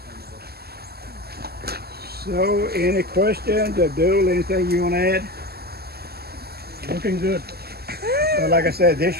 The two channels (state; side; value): late; left; 0.46 ms